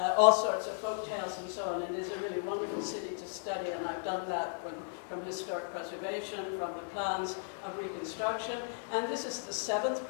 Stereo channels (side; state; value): right; silent; digital silence